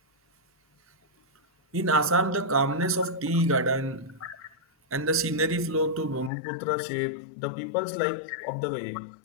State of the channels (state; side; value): drops out; right; at 6.3 s